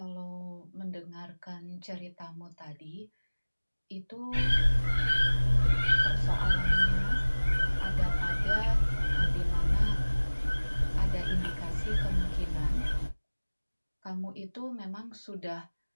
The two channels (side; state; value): both; inverted; correlation -1.00